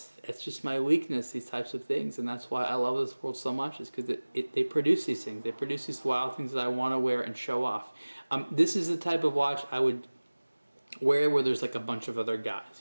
It's just my weakness, these types of things. And that's why I love this world so much, is because they produce these things. They produce these wild things that I want to wear and show off. This is the type of watch I would wear where there's like a bunch of other guys.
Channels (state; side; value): inverted; both; correlation -1.00